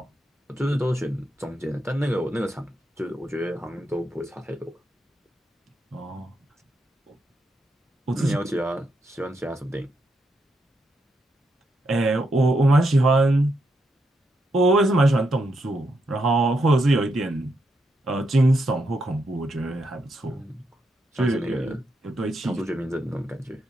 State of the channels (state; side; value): normal; both; correlation 0.81